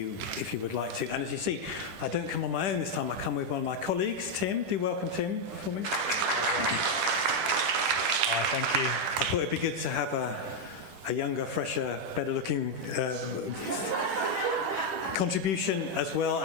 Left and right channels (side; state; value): left; late; 10 ms